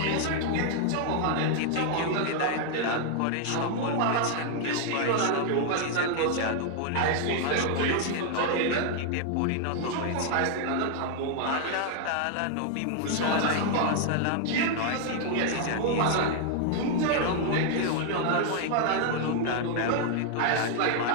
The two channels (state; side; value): different; both; correlation 0.00